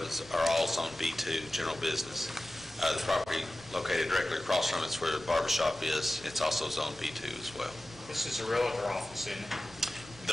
are all zone B2, general business. The property located directly across from it's where the barber shop is. It's also zone B2 as well. This is a realtor office, isn't it?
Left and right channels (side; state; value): right; noise; rumble, 21 dB below the sound